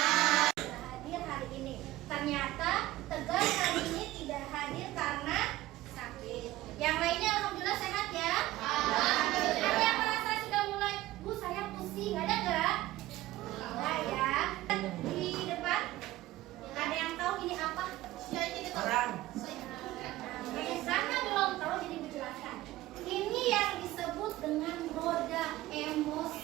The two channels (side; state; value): left; quieter; 16.8 dB